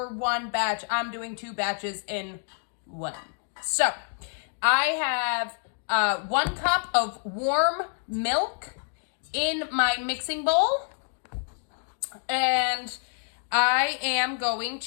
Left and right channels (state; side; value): silent; right; 60 dB below the other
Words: one batch. I'm doing 2 batches in one. So I have 1 cup of warm milk in my mixing bowl, and I am going